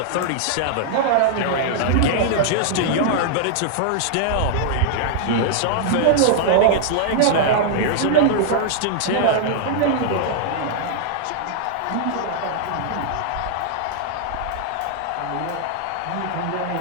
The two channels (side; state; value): both; different; correlation -0.01